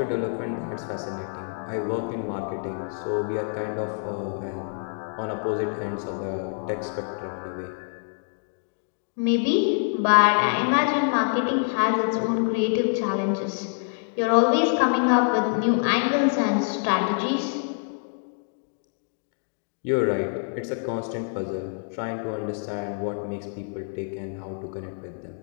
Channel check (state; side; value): silent; right; 61 dB below the other